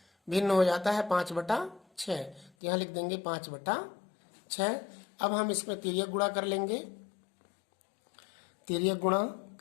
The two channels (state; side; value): drops out; right; at 2.5 s